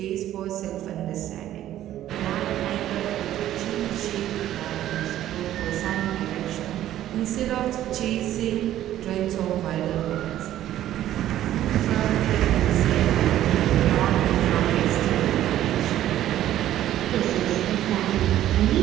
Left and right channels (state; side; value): quieter; left; 12.7 dB